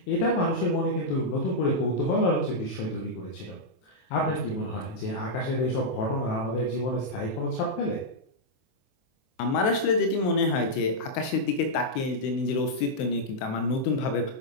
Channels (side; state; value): right; late; 23 ms